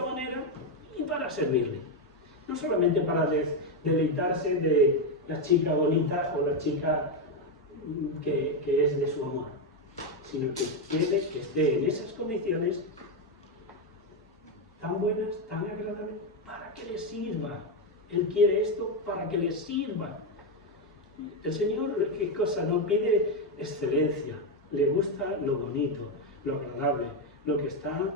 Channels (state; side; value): normal; both; correlation 0.06